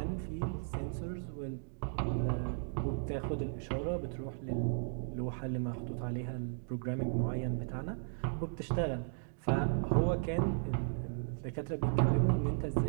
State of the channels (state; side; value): silent; left; digital silence